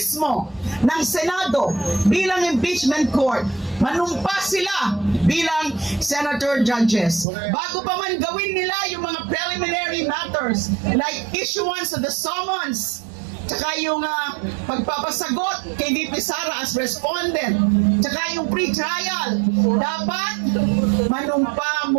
ng Senado bilang impeachment court. Manumpas sila bilang senator judges. Bago pa man gawin nila yung mga preliminary matters like issuance of the summons, tsaka yung pagpapasagot kay VP Sara as respondent, tsaka yung pre-trial, dapat manumpa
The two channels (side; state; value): left; drops out; at 7.2 s